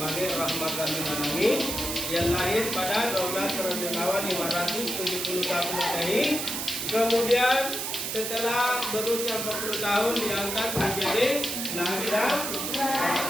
rahmatan lil alamin, yang lahir pada 12 Rabiul Awal 571 Masehi. Kemudian setelah berusia 40 tahun diangkat menjadi nabi dan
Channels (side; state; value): right; noise; hiss, 3 dB below the sound